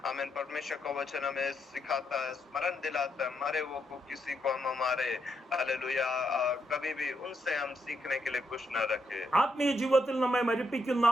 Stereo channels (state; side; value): normal; both; correlation 0.79